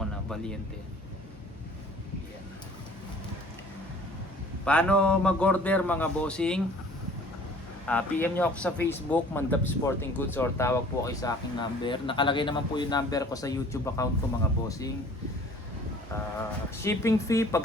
na, Valiente. Yan. Paano mag-order mga bossing? PM nyo ako sa Facebook, Mandap Sporting Goods, or tawag po kayo sa aking number. Nakalagay naman po yung number ko sa YouTube account ko mga bossing. Shipping fee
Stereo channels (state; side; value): normal; both; correlation 0.50